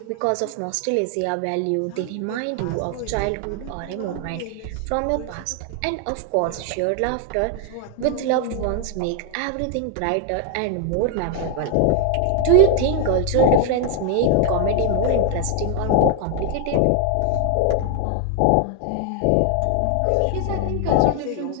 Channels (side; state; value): both; different; correlation 0.00